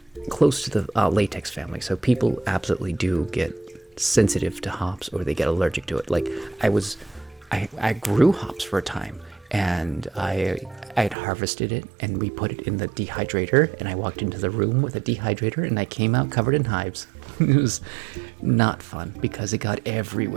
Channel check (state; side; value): drops out; left; at 11.2 s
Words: the latex family, so people absolutely do get sensitive to hops or they get allergic to it. Like I grew hops for a time, and I had harvested it and we put it in the dehydrator, and I walked into the room with a dehydrator and I came out covered in hives. It was not fun because it got